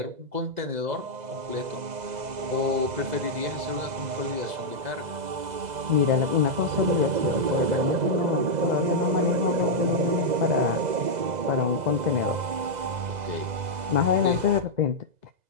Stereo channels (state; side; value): late; left; 2.0 ms